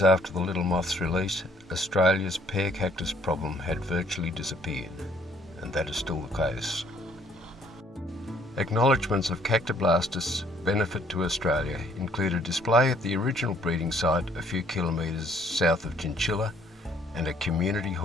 after the little moth's release, Australia's pear cactus problem had virtually disappeared, and that is still the case. Acknowledgements of Cactoblastus' benefit to Australia include a display at the original breeding site a few kilometres south of Chinchilla and a community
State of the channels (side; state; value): both; normal; correlation 0.62